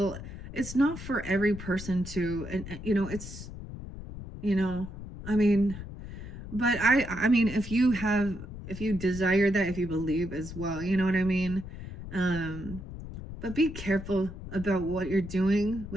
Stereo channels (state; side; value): noise; left; rumble, 11 dB below the sound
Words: It's not for every person to, and you know, it's, you know, I mean, but I mean, if you desire that, if you believe as well, you know what I mean? But be careful about what you're doing